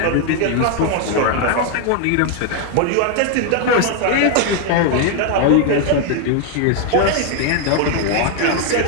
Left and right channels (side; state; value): both; different; correlation 0.01